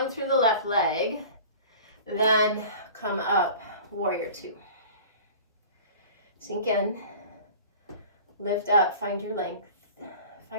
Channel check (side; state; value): both; inverted; correlation -0.41